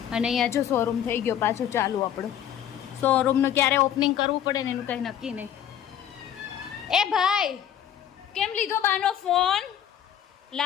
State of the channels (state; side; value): quieter; right; 10.0 dB